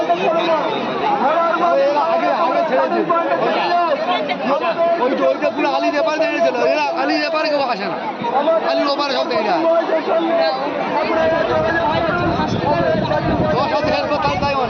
ওইটা পুরো আলি ব্যাপার দেখেছিল এরা আলি ব্যাপারে কেউ আসে না আলির ওপারে সব দেখে যায় তাই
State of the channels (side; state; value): both; identical; correlation 1.00